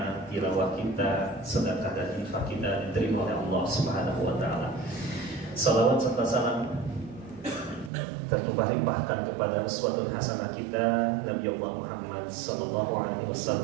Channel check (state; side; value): drops out; left; at 7.9 s